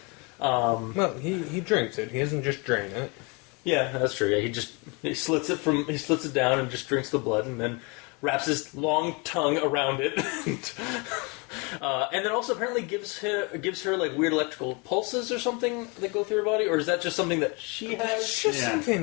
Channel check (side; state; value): right; quieter; 30.2 dB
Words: Well, he drinks it. He doesn't just drain it. Yeah, that's true. Yeah, he slits it down and just drinks the blood, and then wraps his long tongue around it, and then also apparently gives her weird electrical pulses or something that go through her body, or is that just something that she has? It's just